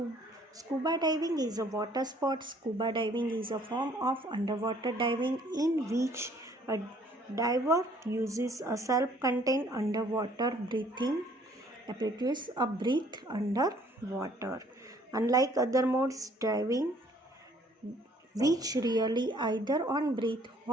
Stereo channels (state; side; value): normal; both; correlation 0.60